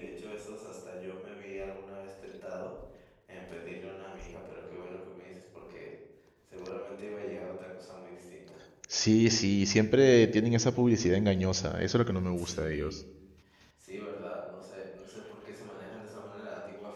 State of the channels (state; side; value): identical; both; correlation 1.00